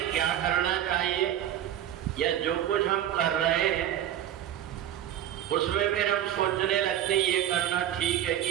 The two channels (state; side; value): quieter; left; 11.3 dB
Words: क्या करना चाहिए या जो कुछ हम कर रहे हैं उसमें फिर हम सोचने लगते हैं ये करना ठीक है